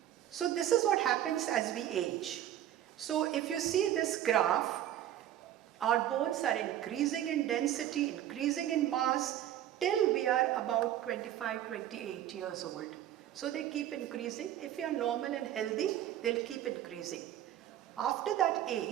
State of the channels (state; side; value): quieter; left; 11.9 dB